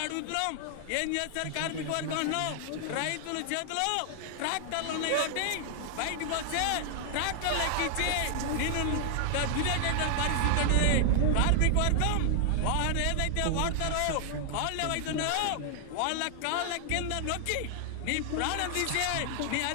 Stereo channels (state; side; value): different; both; correlation 0.00